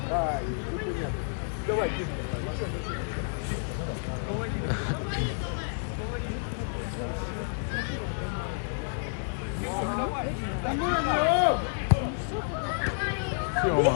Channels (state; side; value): silent; right; 56 dB below the other